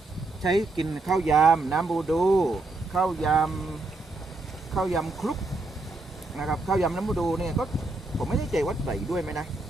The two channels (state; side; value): quieter; left; 3.2 dB